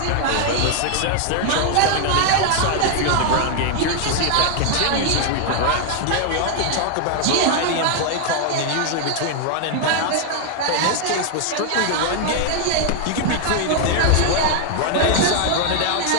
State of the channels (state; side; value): different; both; correlation 0.00